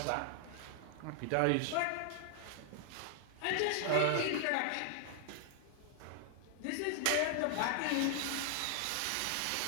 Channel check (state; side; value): different; both; correlation 0.00